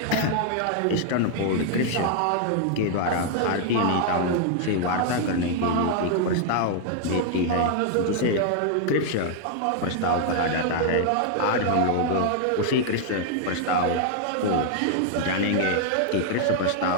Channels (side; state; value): both; different; correlation 0.00